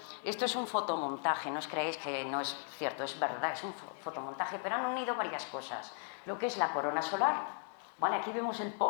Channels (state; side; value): silent; right; 53 dB below the other